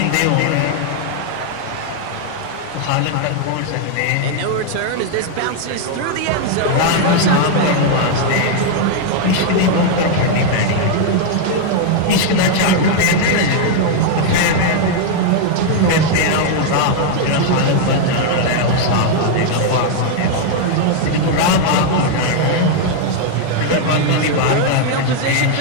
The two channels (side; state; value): both; different; correlation 0.00